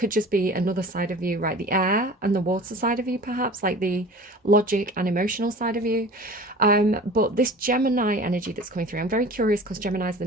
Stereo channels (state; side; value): normal; both; correlation 0.41